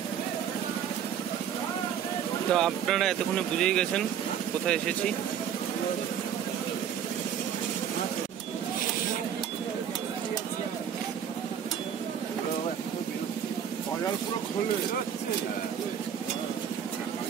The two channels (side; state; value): left; quieter; 8.8 dB